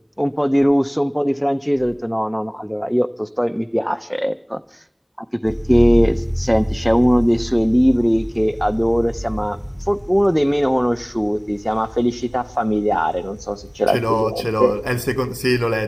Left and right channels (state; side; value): identical; both; correlation 1.00